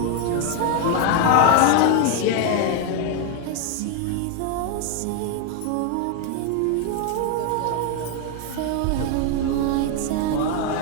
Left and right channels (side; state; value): both; different; correlation 0.01